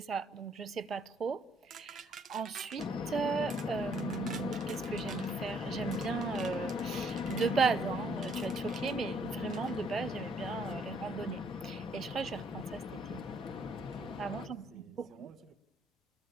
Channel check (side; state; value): both; normal; correlation 0.67